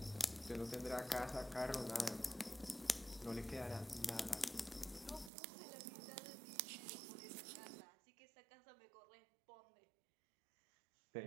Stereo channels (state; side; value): drops out; left; at 5.3 s